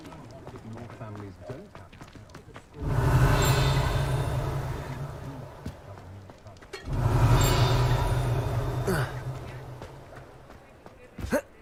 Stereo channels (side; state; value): both; identical; correlation 1.00